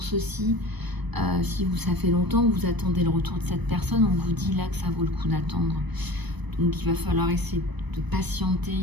aussi. Si ça fait longtemps que vous attendez le retour de cette personne, on vous dit là que ça vaut le coup d'attendre. Donc il va falloir essayer de patienter,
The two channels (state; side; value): late; left; 1.0 ms